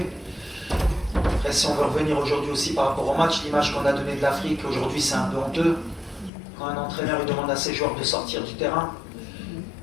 Après, si on veut revenir aujourd'hui aussi par rapport au match, l'image qu'on a donnée de l'Afrique aujourd'hui c'est un peu honteux. Quand un entraîneur il demande à ses joueurs de sortir du terrain,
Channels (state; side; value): drops out; right; at 6.3 s